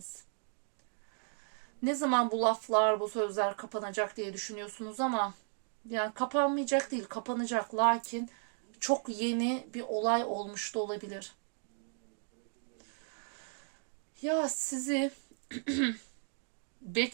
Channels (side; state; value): left; silent; 54 dB below the other